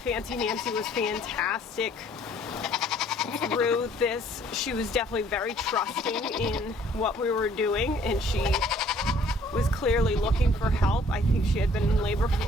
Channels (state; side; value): normal; both; correlation 0.59